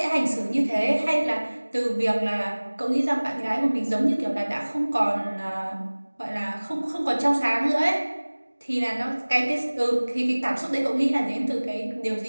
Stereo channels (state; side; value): inverted; both; correlation -1.00